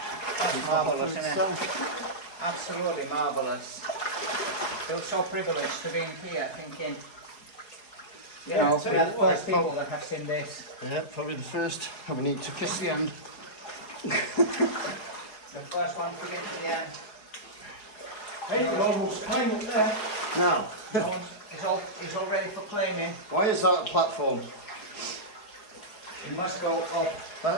Marvellous, isn't it? Absolutely marvellous. Feel so privileged to be in here thinking, you know, we are the first people that have seen this. Yeah, probably the first. And we need to kiss the end. The first one to get to the end. Hey, you almost climbed up there. Now, It's all ready for claiming. why is that a platform? It must go up.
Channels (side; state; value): right; late; 4.8 ms